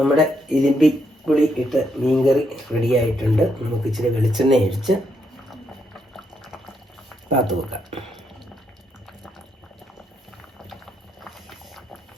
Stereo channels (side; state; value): both; normal; correlation 0.77